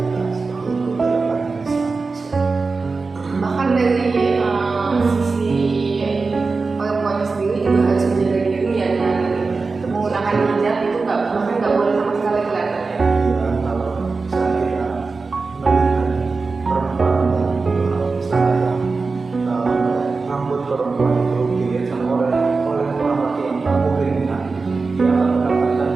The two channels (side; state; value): left; quieter; 4.2 dB